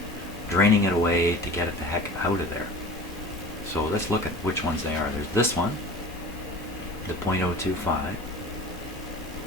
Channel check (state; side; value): normal; both; correlation 0.38